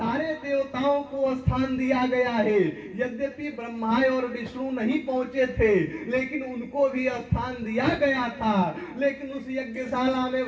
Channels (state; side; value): identical; both; correlation 1.00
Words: देवताओं को स्थान दिया गया है। यद्यपि ब्रह्मा और विष्णु नहीं पहुंचे थे, लेकिन उनको भी स्थान दिया गया था। लेकिन उस यज्ञशाला में